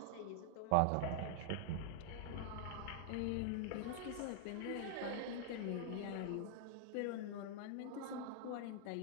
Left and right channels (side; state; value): both; different; correlation -0.01